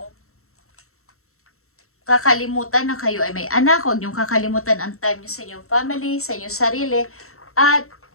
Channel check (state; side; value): late; right; 0.63 ms